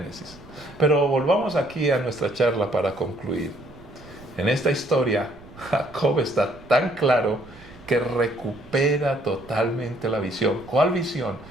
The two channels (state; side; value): noise; right; rumble, 21 dB below the sound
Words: Pero volvamos aquí a nuestra charla para concluir. En esta historia, Jacob está tan claro que recupera totalmente la visión. ¿Cuál visión?